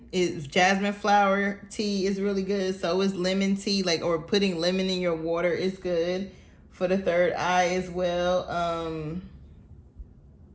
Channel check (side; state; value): both; identical; correlation 1.00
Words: flower tea is really good. So is lemon tea, or putting lemon in your water is good for the third eye as well.